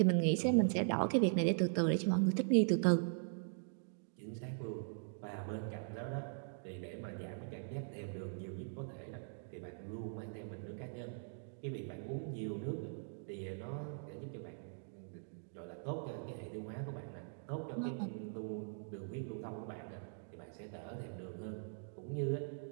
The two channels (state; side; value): silent; left; digital silence